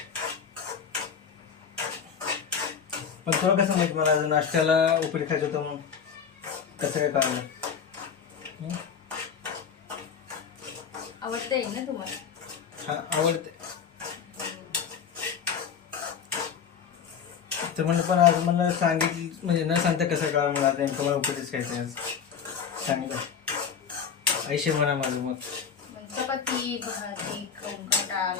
पण तुला कसं माहिती मला आज नाश्त्याला उपीट खायचं होतं म्हणून? कसं काय काम आवडते ना तुम्हाला? हा आवडते. तर म्हणलं पण आज मला सांगितलं म्हणजे न सांगता कसं कळलं मला नेमकं मला उपीटच खायचं आहे आज. सांगितलं ऐशे म्हणा माझं मग. चपाती भाजी खाऊन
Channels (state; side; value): quieter; right; 7.0 dB